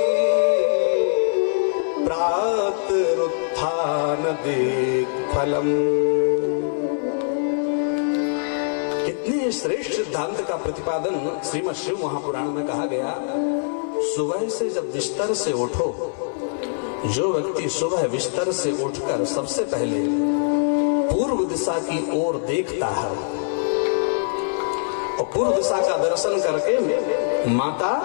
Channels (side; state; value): right; silent; digital silence